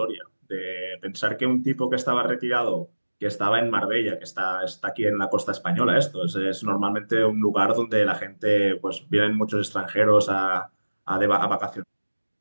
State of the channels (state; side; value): inverted; both; correlation -1.00